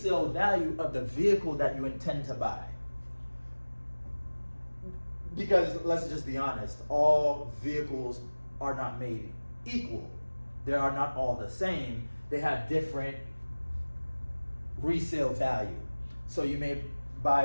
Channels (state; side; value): inverted; both; correlation -1.00